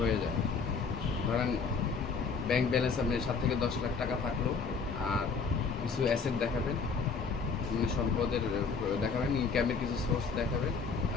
হয়ে যায়। ধরেন ব্যাংক ব্যালেন্স আপনি 7 থেকে 10 লাখ টাকা থাকলো, আর কিছু অ্যাসেট দেখাবেন, মানে সম্পদের দেখাবেন, ইনকামের কিছু সোর্স দেখাবেন,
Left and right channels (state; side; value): quieter; right; 5.1 dB